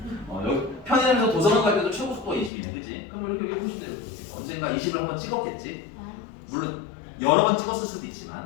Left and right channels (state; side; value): drops out; right; at 2.5 s